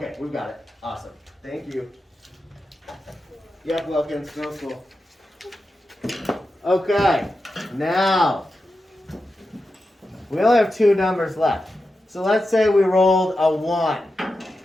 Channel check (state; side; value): normal; both; correlation 0.90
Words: we've got it. Awesome. Thank you. Yep, Wilkins, no school. Okay, now we only have 2 numbers left. So let's say we rolled a 1.